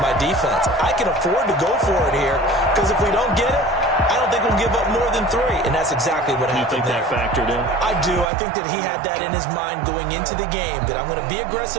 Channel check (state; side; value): drops out; left; at 8.2 s